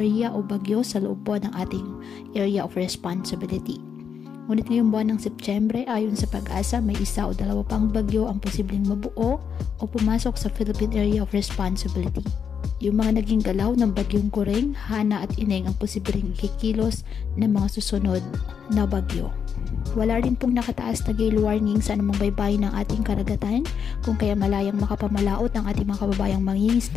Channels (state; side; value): quieter; right; 7.1 dB